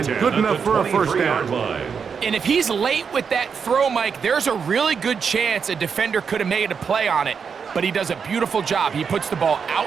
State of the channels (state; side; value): quieter; left; 6.3 dB